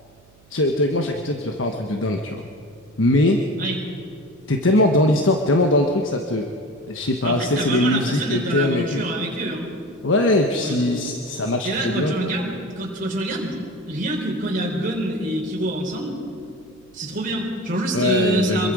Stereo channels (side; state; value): right; noise; hum, 30 dB below the sound